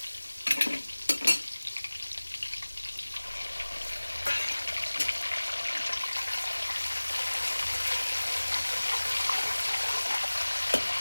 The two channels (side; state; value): both; inverted; correlation -1.00